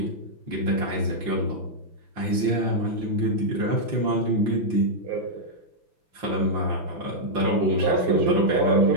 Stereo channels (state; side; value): late; left; 5.9 ms